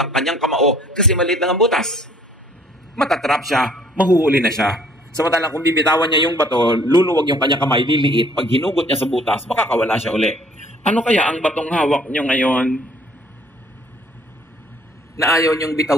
ang kanyang kamao kasi maliit lang ang butas. Matatrap siya, mahuhuli na siya. Samantalang kung bibitawan niya yung bato, luluwag yung kanyang kamay, liliit. Pag hinugot niya sa butas, makakawala siya uli. Ano kaya ang batong hawak niyo ngayon na ayaw niyong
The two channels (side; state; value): both; normal; correlation 0.58